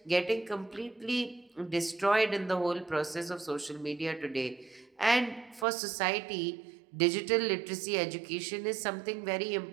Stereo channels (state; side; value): drops out; left; at 5.7 s